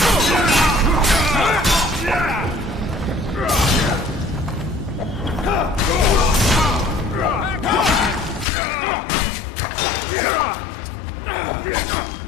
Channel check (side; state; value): right; drops out; at 8.5 s